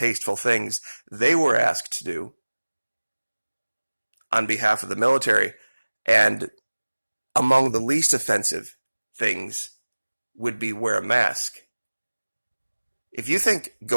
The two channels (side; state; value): both; inverted; correlation -1.00